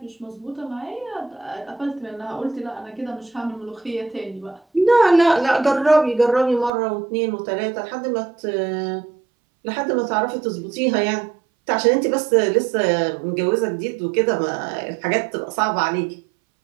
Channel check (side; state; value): left; drops out; at 6.7 s